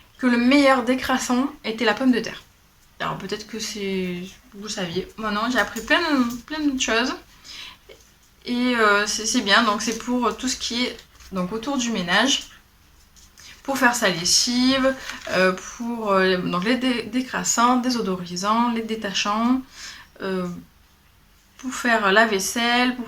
que le meilleur décrassant était la pomme de terre. Alors peut-être que vous saviez. Moi non, j'ai appris plein de choses. Et c'est bien, donc c'est pour tout ce qui est donc, autour du ménage. Pour faire sa lessive, pour donc les décrassants, désodorisants, les détachants, pour faire la vaisselle,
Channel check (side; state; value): both; identical; correlation 1.00